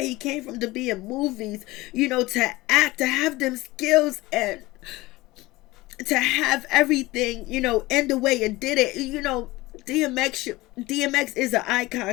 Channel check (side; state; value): right; quieter; 19.9 dB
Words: he came from to be in movies, to act, to have them skills, and to have everything, end the way it did it. DMX is an